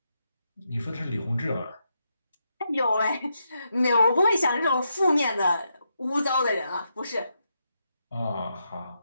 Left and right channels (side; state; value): both; inverted; correlation -0.83